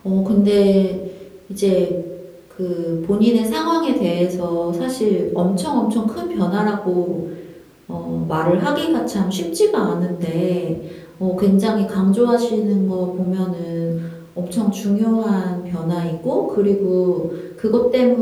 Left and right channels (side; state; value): both; identical; correlation 1.00